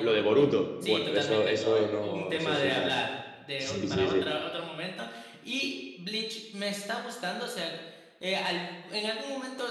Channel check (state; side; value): identical; both; correlation 1.00